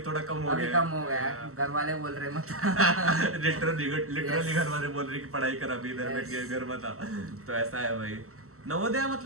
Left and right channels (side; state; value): left; late; 0.63 ms